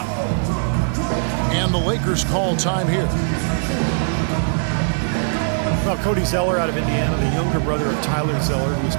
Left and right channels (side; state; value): left; silent; digital silence